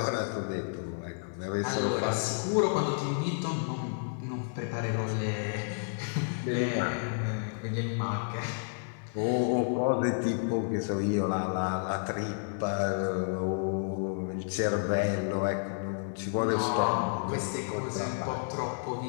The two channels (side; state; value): right; silent; digital silence